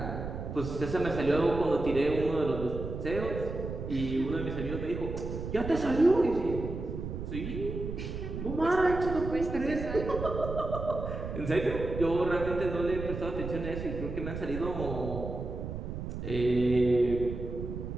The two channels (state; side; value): noise; right; rumble, 6 dB below the sound